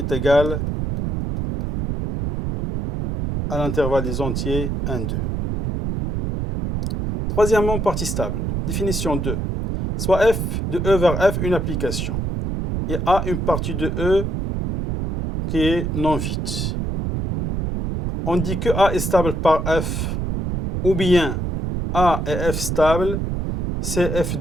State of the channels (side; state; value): right; noise; rumble, 2 dB below the sound